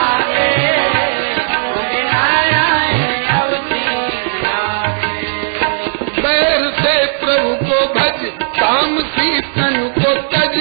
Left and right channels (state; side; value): silent; left; digital silence